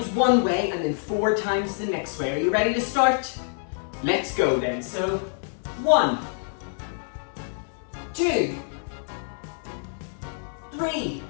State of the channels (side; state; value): right; silent; 61 dB below the other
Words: one way and then 4 times the next way. Are you ready to start? Let's go then. So 1, 2, 3,